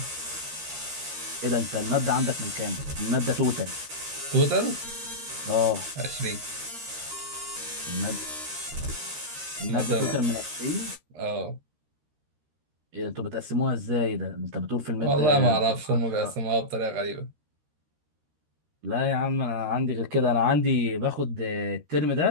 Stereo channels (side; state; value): left; late; 13 ms